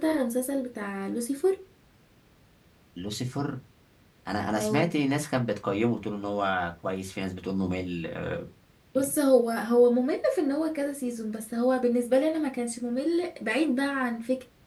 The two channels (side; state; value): both; identical; correlation 1.00